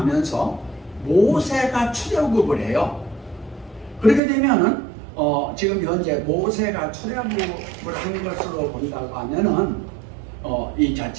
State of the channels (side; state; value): left; drops out; at 4.2 s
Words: 모세가 출애굽을 해요. 그렇게 되면은 지금 현재 모세가 출애굽을 한 것으로 본다고 하면은 이